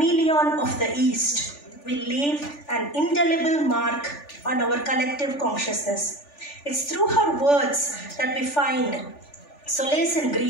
of the East will leave an indelible mark on our collective consciousness. It's through her words that we find solace in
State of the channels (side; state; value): right; late; 3.4 ms